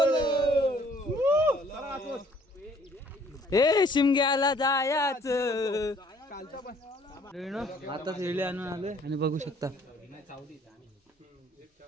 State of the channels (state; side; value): normal; both; correlation 0.59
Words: ए शिमग्याला जायाच आता वेळी आणून आलोय आणि बघू शकता